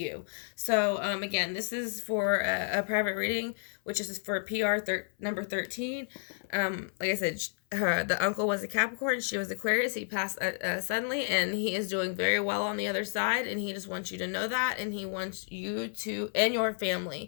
So again, this is for a private reading, which is for PR number 13. Like I said, the uncle was a Capricorn, she was Aquarius. He passed suddenly, and he is doing very well on the other side, and he just wants you to know that, and he wants you to, and your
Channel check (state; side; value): silent; right; 57 dB below the other